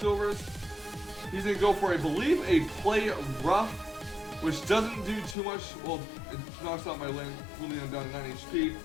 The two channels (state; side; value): drops out; right; at 5.4 s